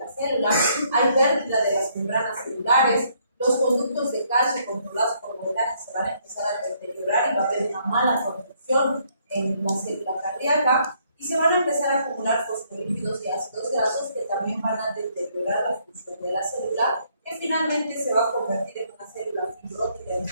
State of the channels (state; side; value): inverted; both; correlation -0.69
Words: célula, hay pérdida de las membranas celulares, los conductos de calcio controlados por voltaje se van a empezar a deteriorar y va a haber una mala conducción en la célula cardíaca y se van a empezar a acumular fosfolípidos y ácidos grasos que también van a deteriorar la función de la célula, que finalmente se va a convertir en una célula fibrótica